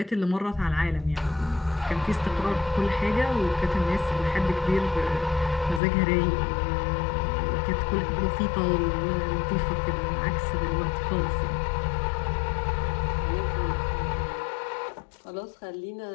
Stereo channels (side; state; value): right; drops out; at 5.8 s